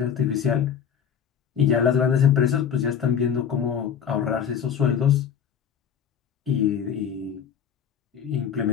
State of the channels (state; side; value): quieter; right; 8.0 dB